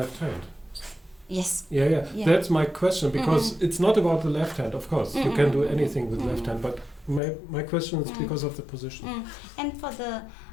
hand. Yes. Yeah. That's my question, because it's not about the left hand, of course. You can do anything with left hand, but my question is because of the position. And for the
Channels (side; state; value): right; drops out; at 7.2 s